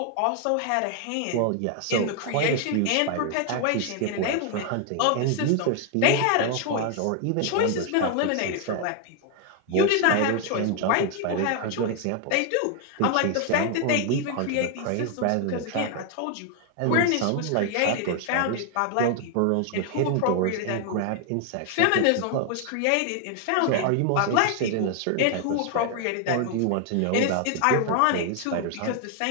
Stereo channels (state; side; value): different; both; correlation 0.00